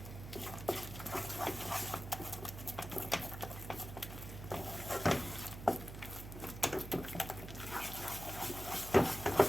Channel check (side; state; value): right; noise; hum, 10 dB below the sound